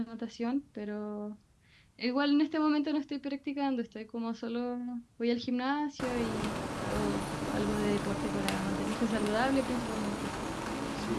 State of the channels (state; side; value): identical; both; correlation 1.00